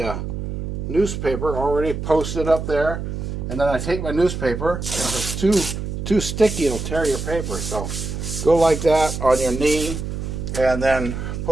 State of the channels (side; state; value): right; noise; hum, 5 dB below the sound